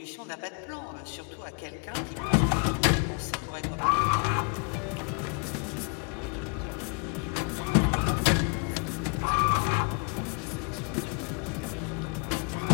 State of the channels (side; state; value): right; quieter; 35.2 dB